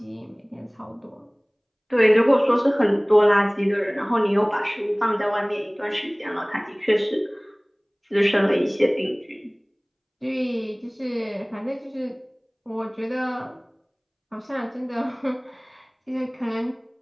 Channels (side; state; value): both; identical; correlation 1.00